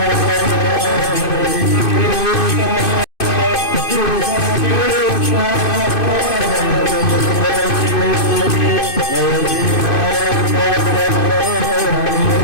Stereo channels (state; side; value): late; right; 2.5 ms